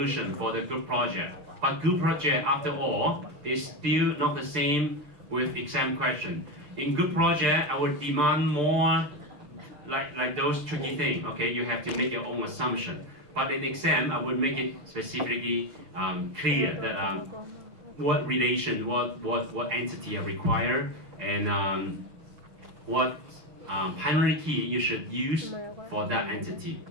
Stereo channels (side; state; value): left; late; 6.8 ms